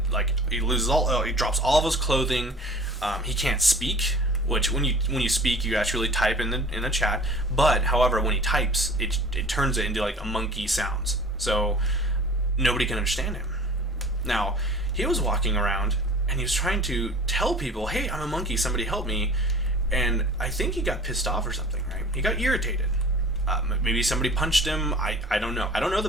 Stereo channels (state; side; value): normal; both; correlation 0.44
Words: Like, he loses he drops all of his clothing. He can't speak, which when you speak, you actually type in the chat. But, however, when he types, it turns it into, like, a monkey sounds. So, nobody can understand him. Now, he was walking around, and he was trying to tell people, hey, I'm a monkey, somebody help me. And I think he got pissed off or something, right? He got irritated. Maybe somebody punched him. I don't know. I don't know the